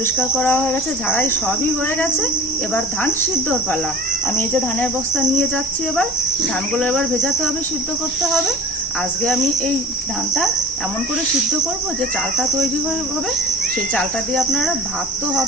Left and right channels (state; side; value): normal; both; correlation 0.39